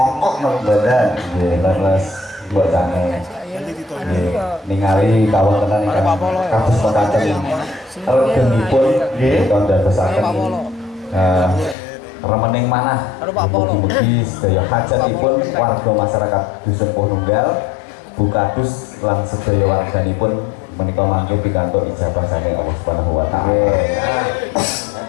napa mboten? Nggih, leres bocange. Nggih, ningali kawontenan ingkang kados wonten regenipun nggih kandadosaken remening manah mugi-mugi sedaya hajatipun warga masyarakat Dusun Pununggal Bukadus lan sedaya warganipun menika mangke pikantuk ijabah saking Allah Subhanahu wa taala.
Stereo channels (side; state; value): right; drops out; at 11.8 s